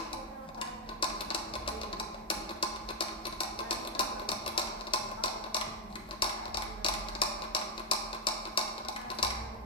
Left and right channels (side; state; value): both; normal; correlation 0.01